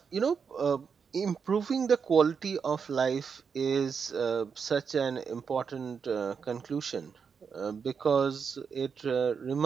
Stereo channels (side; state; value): left; quieter; 6.2 dB